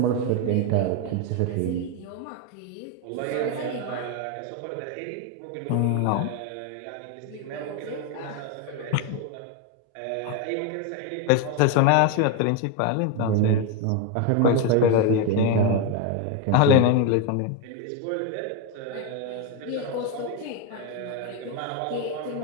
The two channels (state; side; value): different; both; correlation 0.02